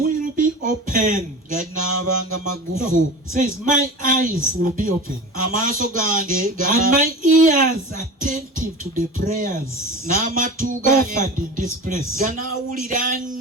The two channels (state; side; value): normal; both; correlation 0.33